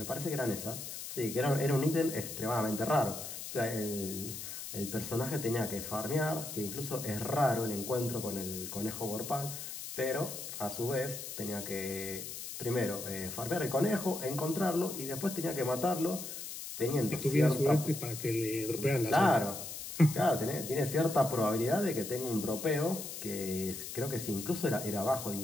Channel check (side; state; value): left; noise; hiss, 8 dB below the sound